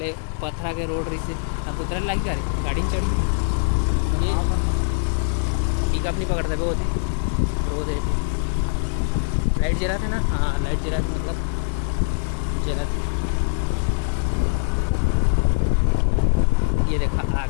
पथरा के रोड रही से अब उतरे लग जा रही गाड़ी में चढ़ी। ये पिकअप नहीं पकड़ते वो होते रोड थे। लाइट जरा थे ना, हाँ लाइट जरा थी, मतलब जरा थी। ये देखा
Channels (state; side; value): silent; right; digital silence